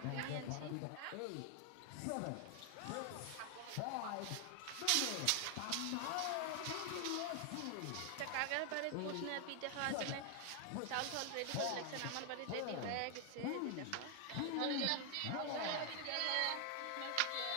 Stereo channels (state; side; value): different; both; correlation 0.00